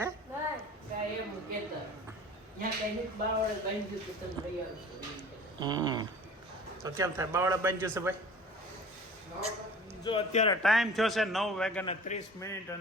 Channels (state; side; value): normal; both; correlation 0.43